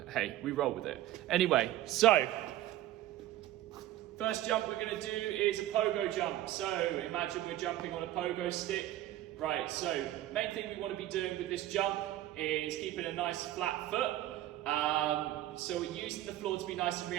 hey, we roll with it. Anyway, so first jump we're going to do is a pogo jump. So imagine we're jumping on a pogo stick. Right, so main thing we want to be doing with this jump is keeping a nice flat foot. So we're using the floor to be nice and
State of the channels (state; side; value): quieter; left; 14.0 dB